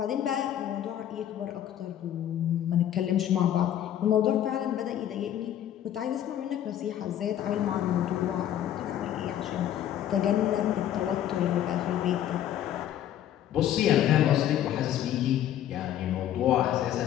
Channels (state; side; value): quieter; right; 11.2 dB